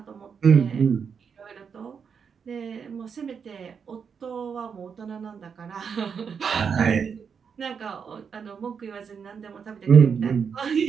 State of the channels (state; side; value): quieter; left; 6.5 dB